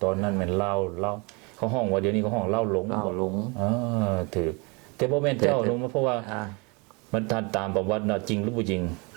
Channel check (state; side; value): quieter; left; 29.5 dB